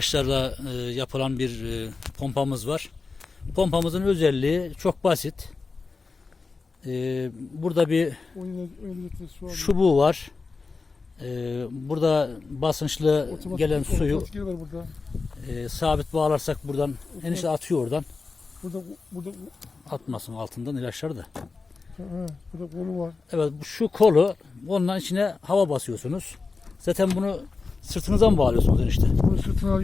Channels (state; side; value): quieter; right; 4.3 dB